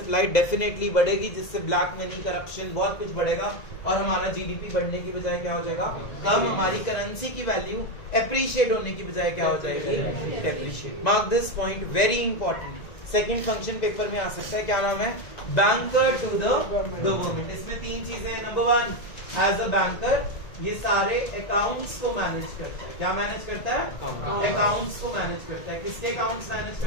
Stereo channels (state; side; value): late; right; 2.0 ms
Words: डेफिनेटली बढ़ेगी, जिससे ब्लैक मनी, करप्शन, बहुत कुछ बढ़ेगा और हमारा जीडीपी बढ़ने की बजाय क्या हो जाएगा? कम। हमारी करेंसी की वैल्यू एप्रिशिएट होने की बजाय क्या हो जाएगी? Depreciate. Mark this point, very important. Second function paper में आ सकता है, क्या नाम है? Banker to the government. इसमें 3 चीजें हैं। नंबर 1, एज अ बैंकर ये सारे अकाउंट्स को मैनेज करता है। क्या मैनेज करता है? अकाउंट्स को मैनेज करता है। किसके अकाउंट्स मैनेज